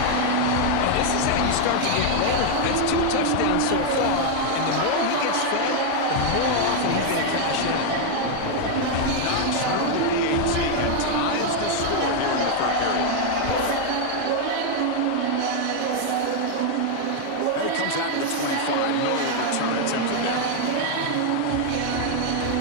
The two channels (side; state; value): both; different; correlation 0.01